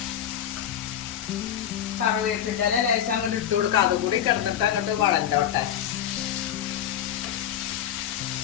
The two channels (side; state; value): right; quieter; 10.1 dB